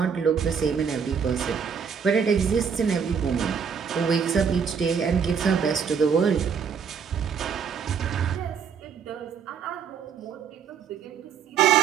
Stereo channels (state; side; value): quieter; left; 6.7 dB